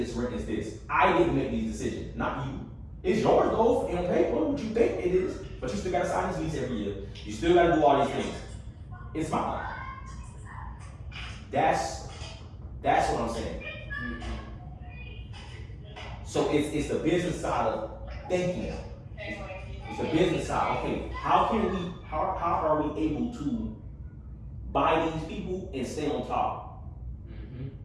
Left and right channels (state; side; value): identical; both; correlation 1.00